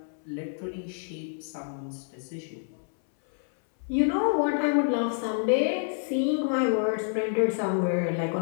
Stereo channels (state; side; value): silent; right; 59 dB below the other